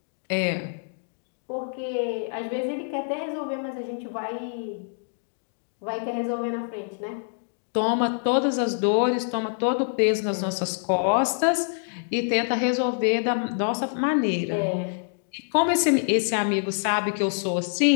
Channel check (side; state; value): right; silent; digital silence